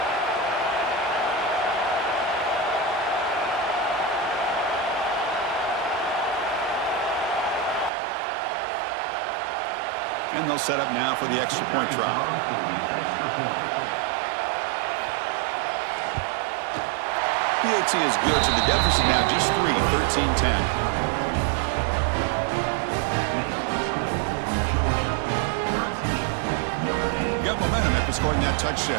And they'll set up now for the extra point try. PAT is good, so the deficit now just 3, 13-10. Got momentum after scoring that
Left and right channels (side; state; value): left; drops out; at 7.9 s